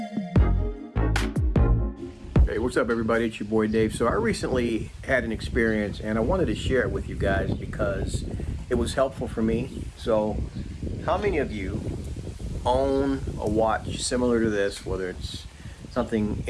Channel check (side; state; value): both; identical; correlation 1.00